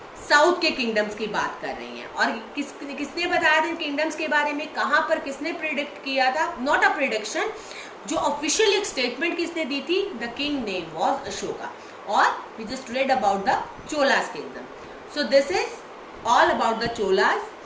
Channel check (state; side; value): identical; both; correlation 1.00